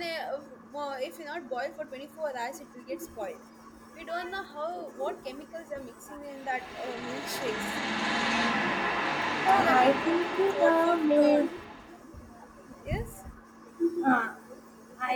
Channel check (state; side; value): identical; both; correlation 1.00